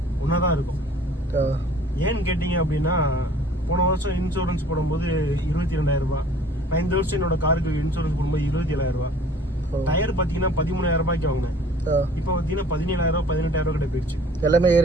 ஒன்றா தான் இருக்கும். ஏன்னு கேட்டிங்க அப்படின்னா போன வருஷம் இன்சூரன்ஸ் போடும்போது 22,000 ரூபாய், நான் இந்த வருஷம் என்னோட காருக்கு இன்சூரன்ஸ் போடும்போது 27,000 ரூபாய். டயர் பார்த்தீங்கன்னா 13,000 ரூபாய்க்கு வாங்கினேன். இப்போ பார்த்தீங்கன்னா 17,000 18,000 கிட்ட போயிடுச்சு. எல்லாமே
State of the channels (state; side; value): normal; both; correlation 0.51